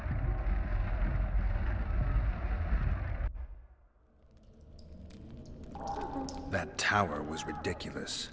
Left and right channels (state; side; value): identical; both; correlation 1.00